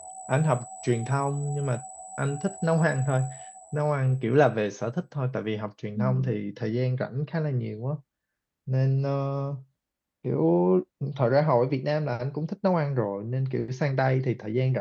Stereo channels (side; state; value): both; identical; correlation 1.00